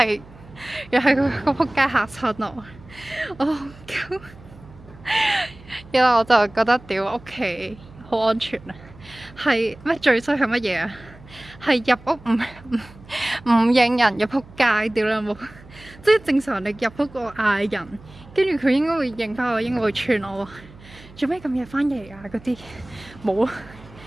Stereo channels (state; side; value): noise; right; hum, 21 dB below the sound